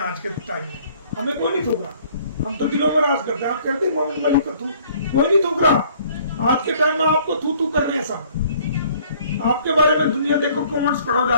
आज के टाइम में, हमें कोई नहीं थूक रहा। हम तो दिलों में राज करते हैं। आप कहते हैं मोमिन मलिक को थूक, कोई नहीं थूक रहा। आज के टाइम में आपको थू थू कर रहे हैं सब। आपके बारे में दुनिया देखो, कमेंट्स पढ़ो जा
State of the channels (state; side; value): inverted; both; correlation -0.58